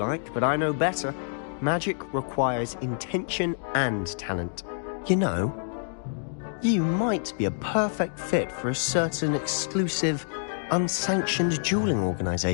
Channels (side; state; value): right; silent; digital silence